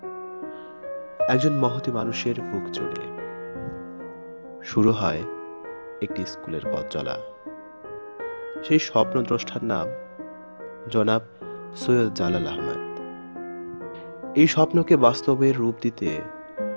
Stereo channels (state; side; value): inverted; both; correlation -1.00